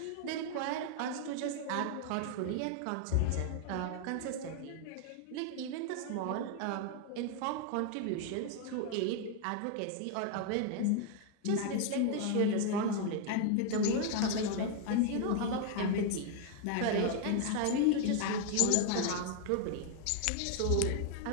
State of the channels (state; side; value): different; both; correlation 0.00